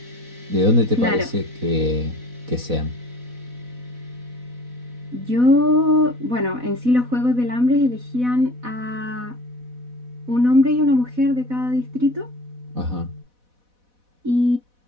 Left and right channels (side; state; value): left; late; 4.1 ms